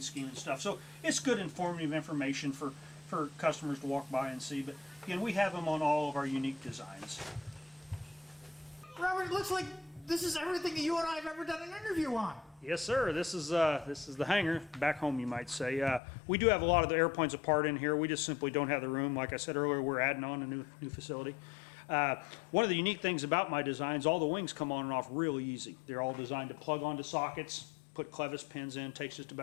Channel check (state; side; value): drops out; right; at 16.0 s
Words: scheme and stuff. So it's good informative information for customers to walk by and see. But again, we have them on all of our unique designs. Robert, it looks like this is everything that you and I have ever done an interview on. Yes, sir. This is the hangar back home, you might say. We do have a lot of the airplanes apart in here. We just simply don't have the room. Like I said earlier, we're adding on a new facility. One of the unique things about my designs, all the wings come on and off really easy. They're all designed to plug onto sockets, put clevis pins in, takes just